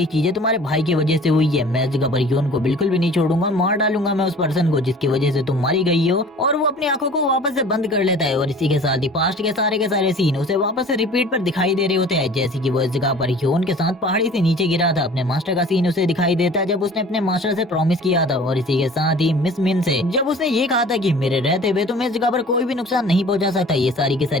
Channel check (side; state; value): both; normal; correlation 0.46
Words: चीजें तुम्हारे भाई की वजह से हुई है। मैं इस जगह पर योन को बिल्कुल भी नहीं छोड़ूंगा, मार डालूंगा मैं उस पर्सन को जिसकी वजह से तुम मारी गई हो। और वो अपनी आंखों को वापस से बंद कर लेता है और इसी के साथ ही पास्ट के सारे सीन उसे वापस से रिपीट पर दिखाई दे रहे होते हैं। जैसे कि वो इस जगह पर योन के साथ पहाड़ी से नीचे गिरा था, अपने मास्टर का सीन उसे दिखाई देता है जब उसने अपने मास्टर से प्रॉमिस किया था। और इसी के साथ ही मिस मिन से जब उसने ये कहा था कि मेरे रहते हुए तुम्हें इस जगह पर कोई भी नुकसान नहीं पहुंचा सकता। ये सारी की